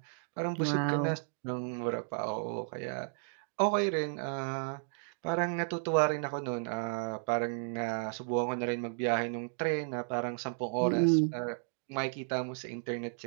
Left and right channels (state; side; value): silent; left; digital silence